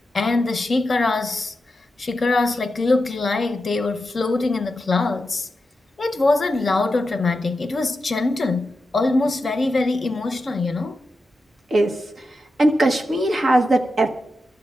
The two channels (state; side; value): normal; both; correlation 0.89